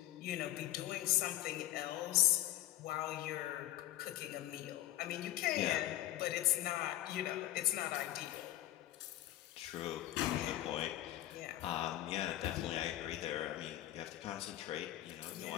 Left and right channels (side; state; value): right; quieter; 14.1 dB